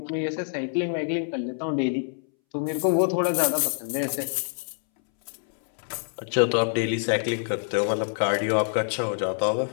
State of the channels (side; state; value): right; silent; 61 dB below the other